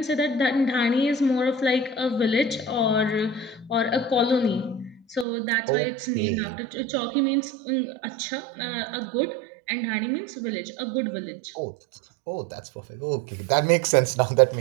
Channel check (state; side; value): drops out; left; at 5.2 s